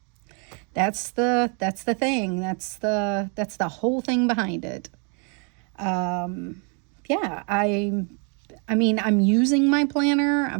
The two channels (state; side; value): quieter; left; 37.5 dB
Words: That's the thing. That's the whole thing behind it. Yeah, I mean, I'm using my planner.